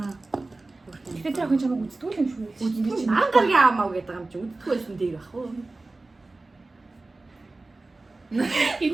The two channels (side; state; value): left; quieter; 3.2 dB